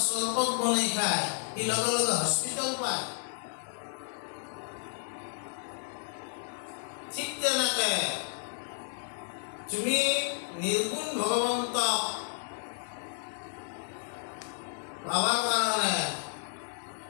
চৰবত বনাই খায় সি লগে লগে হস্পিটেল পায়। ঠিক তেনেকে তুমি নিৰ্গুণ ভগৱন্তক পাবৰ কাৰণে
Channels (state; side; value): silent; right; digital silence